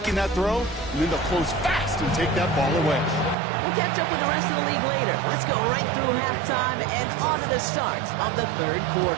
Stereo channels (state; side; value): drops out; left; at 3.4 s